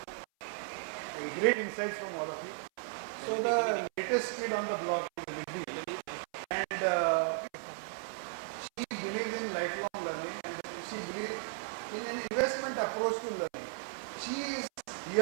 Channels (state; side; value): silent; left; 54 dB below the other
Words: great insights from all of you. So the latest kid on the block is Riddhi, and she believes in lifelong learning and she believes in an investment approach to learning. She is